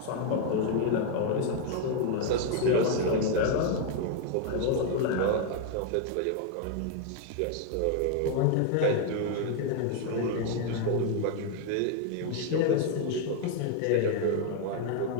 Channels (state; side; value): different; both; correlation 0.01